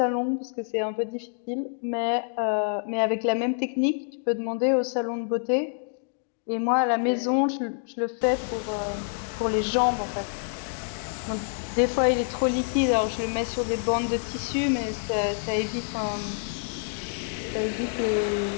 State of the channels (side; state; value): right; silent; digital silence